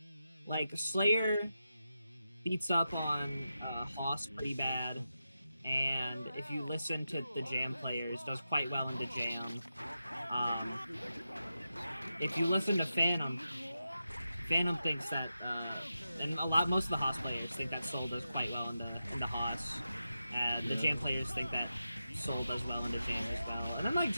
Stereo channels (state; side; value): inverted; both; correlation -0.90